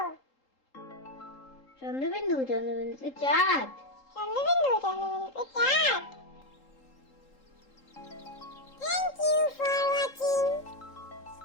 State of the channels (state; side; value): late; right; 3.8 ms